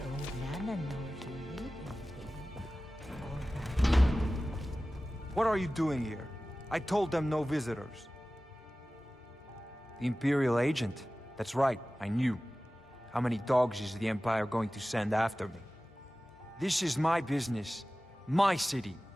Nana know if you need anything. What are you doing here? I told them no visitors. The Imperial agent? That's right, I knew. How many dogs is the Empire going to send after me? This is my business. My city.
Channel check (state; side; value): normal; both; correlation 0.96